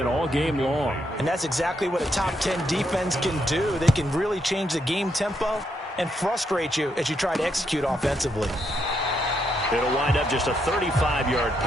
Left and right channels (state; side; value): normal; both; correlation 0.78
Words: all game long. And that's exactly what a top 10 defense can do. They can really change the game tempo and frustrate you as you try to execute offensively. It'll wind up just a 35-yard